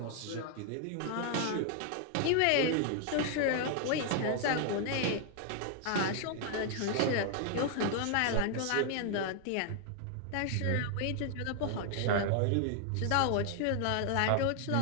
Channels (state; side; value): different; both; correlation 0.00